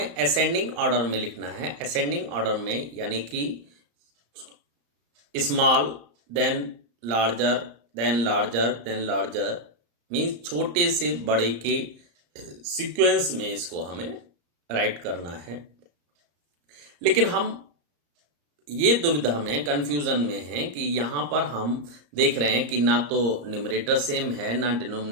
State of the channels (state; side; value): late; left; 34 ms